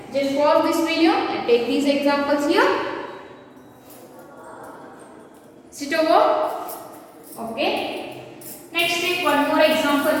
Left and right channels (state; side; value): identical; both; correlation 1.00